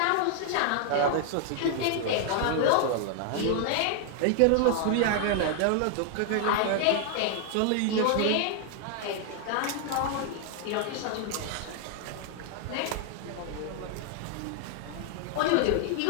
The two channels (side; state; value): both; different; correlation 0.00